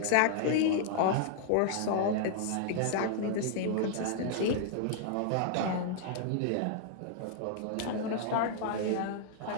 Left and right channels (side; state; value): both; different; correlation -0.01